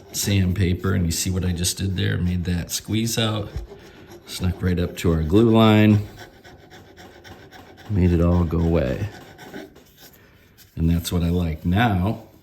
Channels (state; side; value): identical; both; correlation 1.00